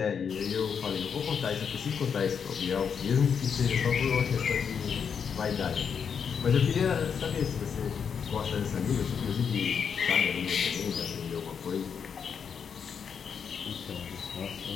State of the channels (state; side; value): quieter; right; 6.9 dB